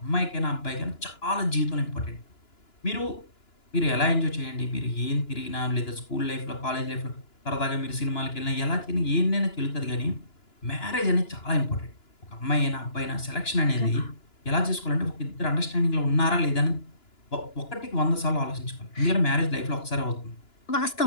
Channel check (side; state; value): right; late; 2.9 ms